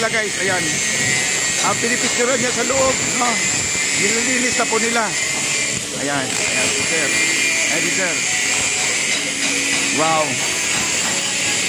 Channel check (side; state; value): both; identical; correlation 1.00